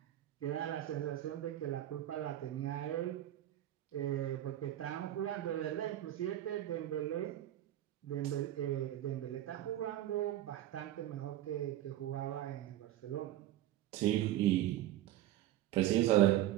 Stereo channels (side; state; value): left; quieter; 13.2 dB